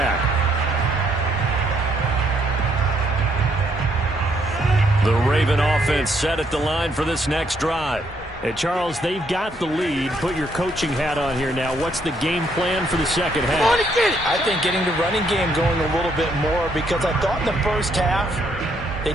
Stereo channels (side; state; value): both; normal; correlation 0.71